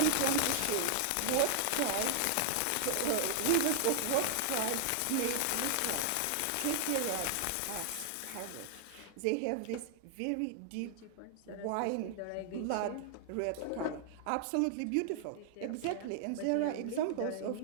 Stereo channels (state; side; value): different; both; correlation 0.00